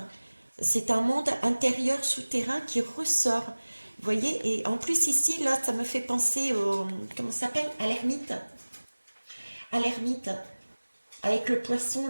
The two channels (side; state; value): both; inverted; correlation -1.00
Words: C'est un monde intérieur souterrain qui ressort. Vous voyez? Et en plus, ici, là, ça me fait penser au... Comment ça s'appelle? À l'ermite. À l'ermite. Avec le poisson,